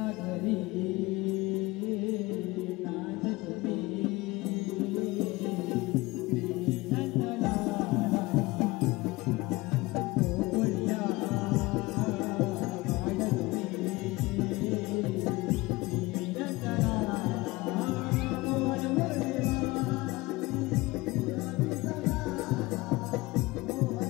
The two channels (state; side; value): quieter; right; 21.4 dB